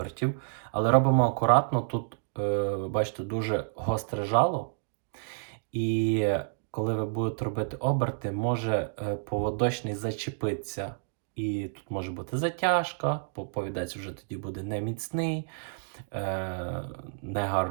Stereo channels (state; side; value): silent; left; digital silence